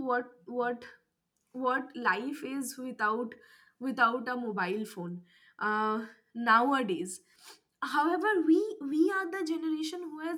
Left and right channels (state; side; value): identical; both; correlation 1.00